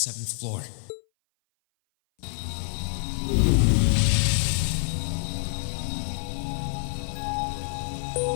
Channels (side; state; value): right; silent; 57 dB below the other